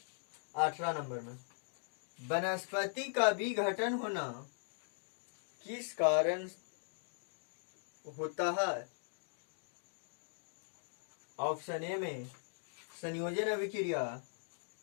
18 नंबर में, वनस्पति का विघटन होना किस कारण होता है? ऑप्शन ए में संयोजन अभिक्रिया,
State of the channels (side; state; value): right; silent; digital silence